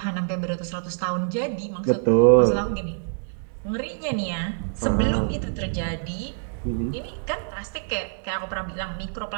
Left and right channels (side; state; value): left; silent; 61 dB below the other